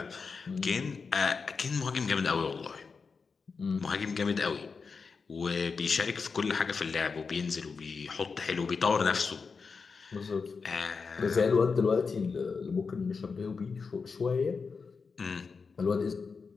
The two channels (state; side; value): quieter; right; 5.0 dB